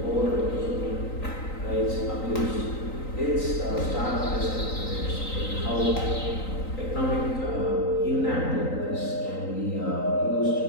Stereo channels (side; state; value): right; late; 3.9 ms